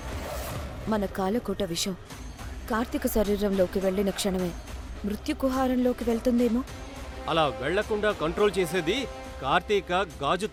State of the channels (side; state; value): both; identical; correlation 1.00